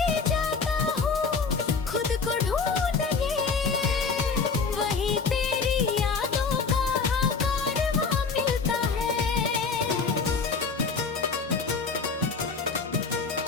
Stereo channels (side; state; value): right; quieter; 4.9 dB